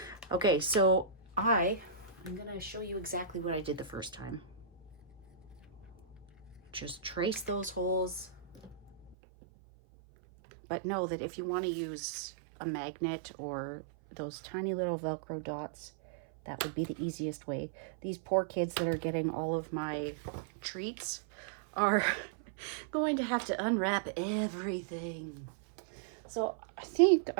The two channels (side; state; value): left; drops out; at 9.2 s